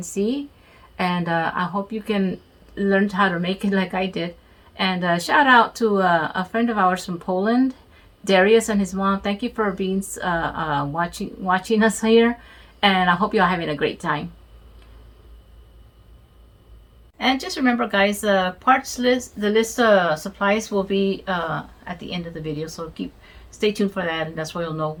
see, and I hope you can learn how to make it like I did. And shout out to a friend of ours from Poland, Darius and his mom. Thank you for being watching us here, and I hope you're having a great time. And just remember, guys, parts list, the list of supplies will be at the end of the video. So stay tuned for that, and that's where you'll know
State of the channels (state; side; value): identical; both; correlation 1.00